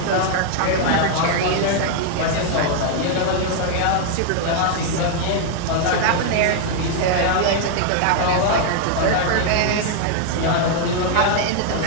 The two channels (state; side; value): different; both; correlation 0.00